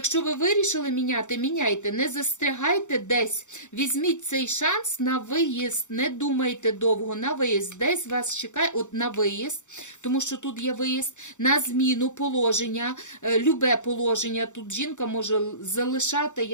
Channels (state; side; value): late; right; 0.85 ms